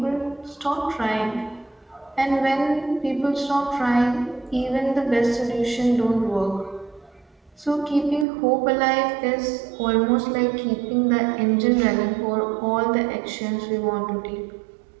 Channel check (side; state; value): left; drops out; at 8.2 s